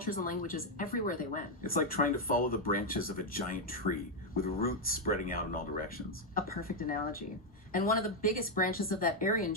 and languages everywhere they went. It's like trying to follow the branches of a giant tree, with roots spreading out in all directions. A perfect analogy. And one of the biggest branches of that Aryan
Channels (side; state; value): both; normal; correlation 0.01